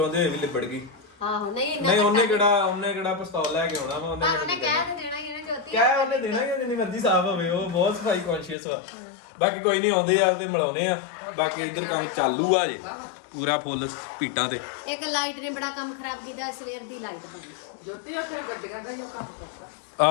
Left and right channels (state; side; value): drops out; right; at 8.6 s